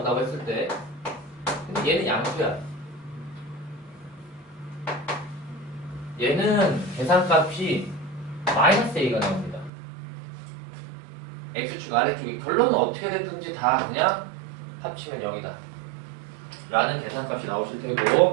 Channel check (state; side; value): drops out; left; at 9.7 s